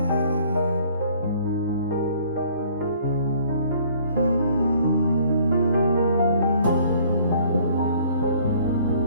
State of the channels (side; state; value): both; inverted; correlation -0.57